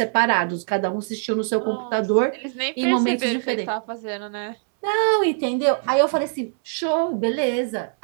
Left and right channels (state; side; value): silent; left; 64 dB below the other